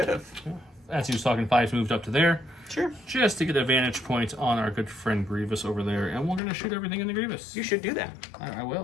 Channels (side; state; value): right; drops out; at 6.4 s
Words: have. Yeah. As he was talking, 5s moved up to there. Sure. Just to get a vantage point on our good friend Grievous over there, and we're going to shoot everything in the Grievous. You should do that. I